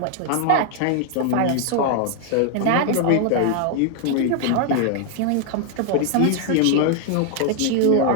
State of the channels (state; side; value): different; both; correlation 0.00